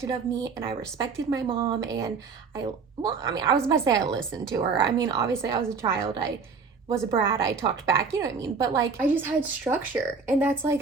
of me, and I respected my mom, and I was about to say I listened to her. I mean, obviously I was a child. I was a brat, I talked back, you know what I mean? But like, I just had structure, and that's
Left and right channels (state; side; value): quieter; left; 5.2 dB